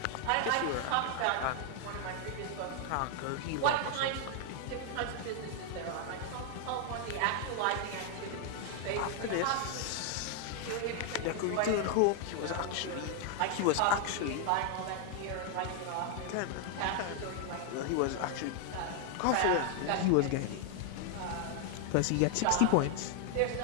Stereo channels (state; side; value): different; both; correlation 0.00